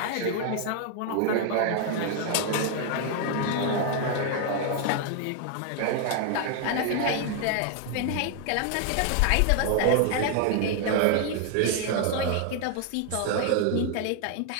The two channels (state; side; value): different; both; correlation 0.00